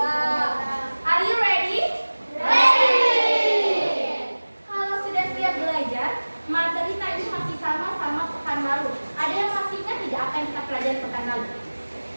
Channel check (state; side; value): inverted; both; correlation -1.00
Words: Are you ready? Kalau sudah siap belajar, materi tadi masih sama pekan lalu. Ada yang masih ingat tidak apa yang kita pelajari pekan lalu?